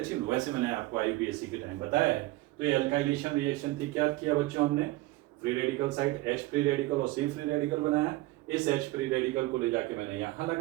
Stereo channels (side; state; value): left; quieter; 19.2 dB